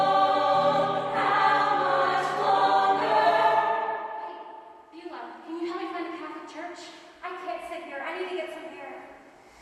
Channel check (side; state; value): both; identical; correlation 1.00